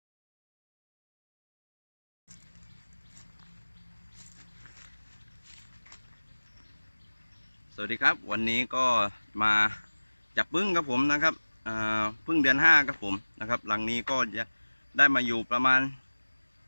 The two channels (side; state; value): both; inverted; correlation -1.00